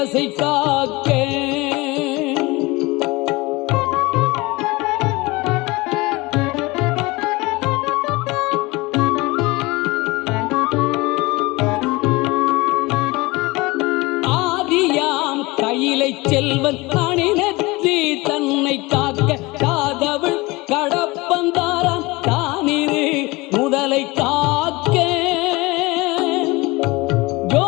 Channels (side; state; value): right; quieter; 22.8 dB